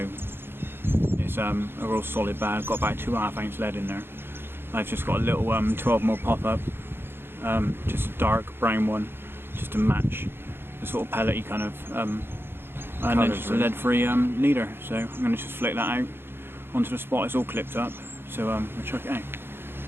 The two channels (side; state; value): left; late; 0.11 ms